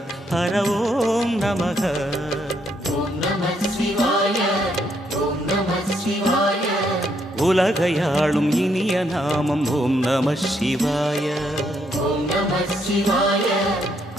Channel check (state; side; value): normal; both; correlation 0.74